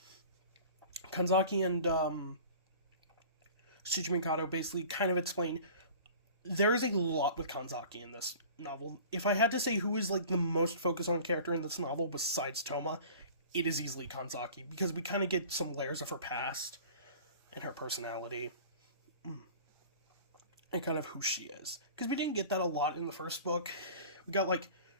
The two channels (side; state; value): both; inverted; correlation -0.43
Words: Kanzaki and Shuji Mikado basically kind of explain there is a lot with Kanzaki in this novel. If I had to say who is like the most focused on character in this novel besides Toma, it is easily Kanzaki, because we kind of get some layers of her past and her personality and kind of who she is. Because we didn't get that a lot in the first book. We got like